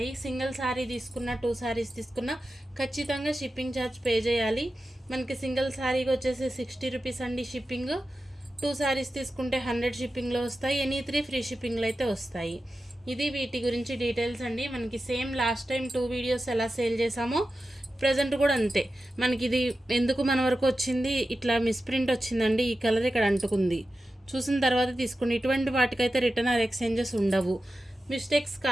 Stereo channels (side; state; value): both; normal; correlation 0.92